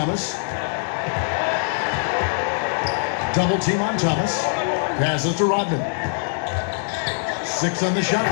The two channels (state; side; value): silent; right; 64 dB below the other